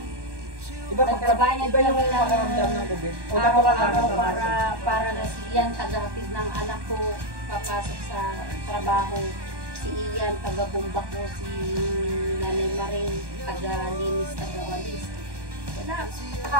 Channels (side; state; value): left; late; 1.1 ms